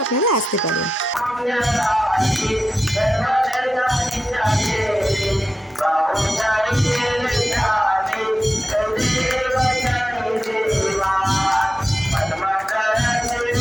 আপনারা আসতে পারেন।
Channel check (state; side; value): normal; both; correlation 0.91